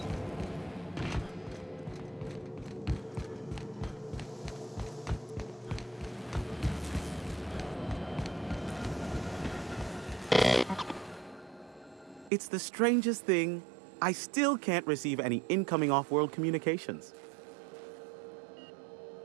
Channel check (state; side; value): drops out; left; at 12.3 s